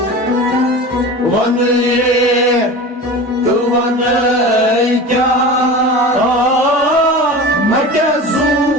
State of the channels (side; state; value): both; normal; correlation 0.33